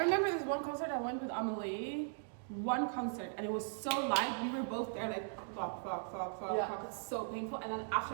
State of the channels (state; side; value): silent; left; digital silence